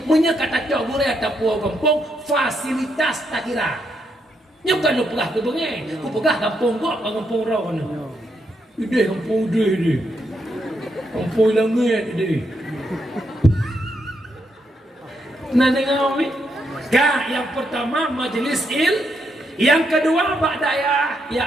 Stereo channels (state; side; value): normal; both; correlation 0.79